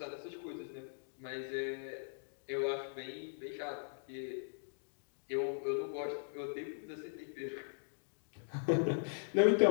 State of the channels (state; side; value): silent; right; digital silence